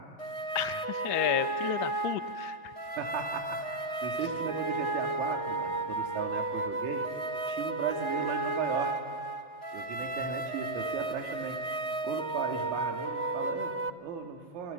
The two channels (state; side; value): late; right; 3.5 ms